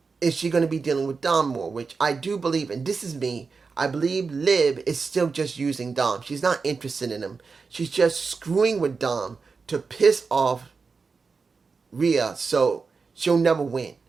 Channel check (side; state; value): left; quieter; 4.7 dB